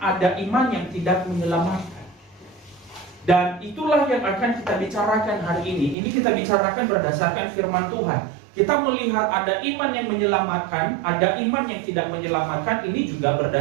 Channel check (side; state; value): left; drops out; at 6.0 s